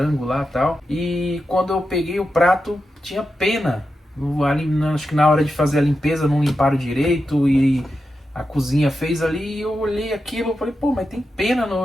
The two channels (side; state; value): both; normal; correlation 0.89